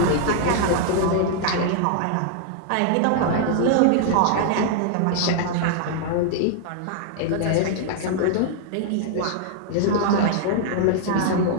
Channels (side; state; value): both; different; correlation -0.01